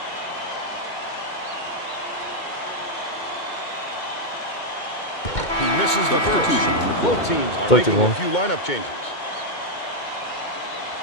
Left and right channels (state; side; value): late; right; 2.2 ms